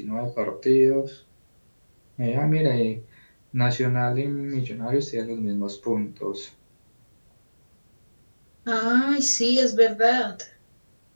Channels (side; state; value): both; inverted; correlation -1.00